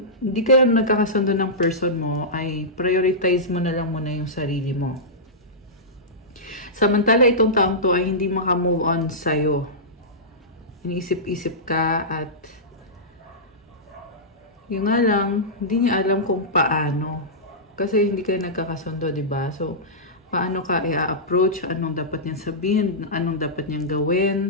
kayo nagkakasundo ng person mo, ay prioritize mo na lang muna yung sarili mo. Samantala, itong taong to ay hindi makamove on sa'yo. Iniisip-isip ka at yung nga lang, hindi niya alam kung paano. Kasi hindi kayo nagkakasundo, diba? So, paano ka i-approach, anong dapat niyang sabihin, anong dapat niyang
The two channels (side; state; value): both; normal; correlation -0.15